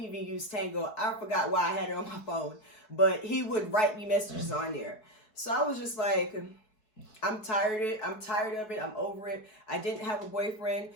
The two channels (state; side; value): late; right; 4.7 ms